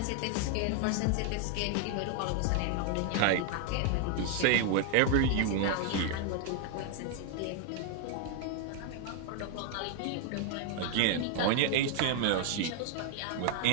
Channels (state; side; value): different; both; correlation 0.00